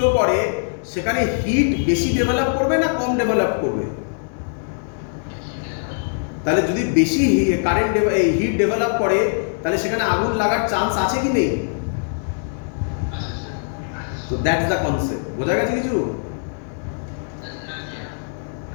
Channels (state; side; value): silent; right; digital silence